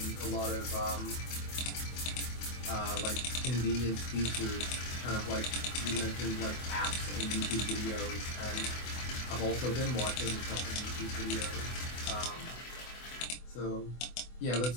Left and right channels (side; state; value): right; late; 24 ms